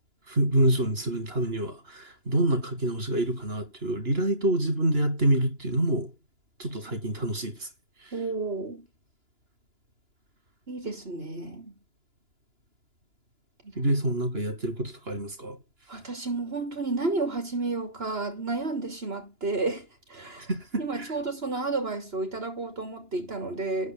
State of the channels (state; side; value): late; left; 2.9 ms